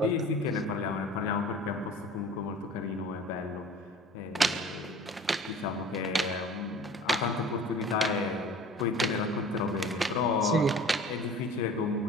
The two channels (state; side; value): normal; both; correlation 0.44